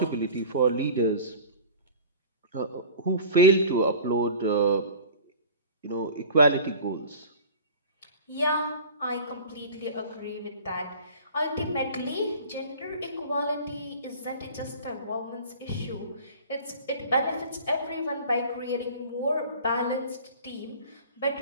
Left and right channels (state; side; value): inverted; both; correlation -0.40